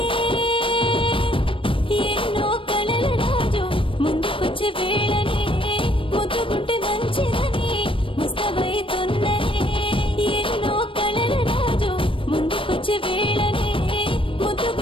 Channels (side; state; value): right; late; 0.25 ms